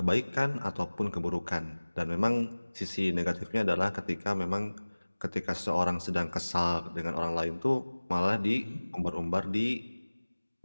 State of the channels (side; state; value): both; inverted; correlation -1.00